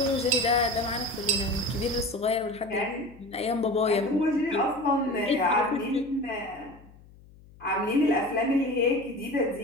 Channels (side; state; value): left; noise; hum, 24 dB below the sound